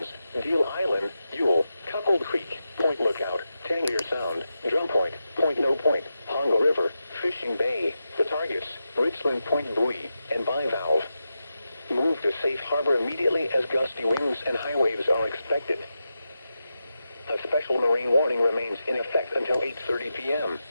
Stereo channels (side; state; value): both; inverted; correlation -0.89